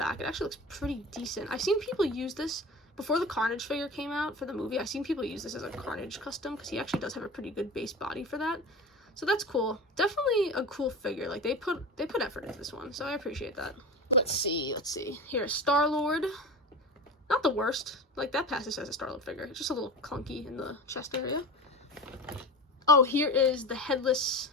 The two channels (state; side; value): normal; both; correlation 0.31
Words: it actually looks pretty decent. I've seen people use this before the Carnage figure came out for the movie. I've seen people use this as a Carnage custom because he actually does have a pretty good base body for that. So that's cool. Definitely a cool figure. Like, they put effort into this one, so I appreciate that. Let's see. Here's Star-Lord. Not the worst. Like, that passes as a Star-Lord figure. It's just a little clunky in the chest area. Oh, here is the headless